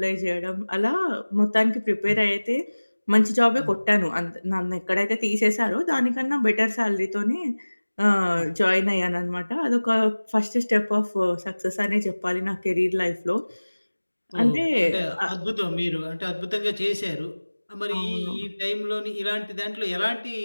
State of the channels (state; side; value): inverted; both; correlation -1.00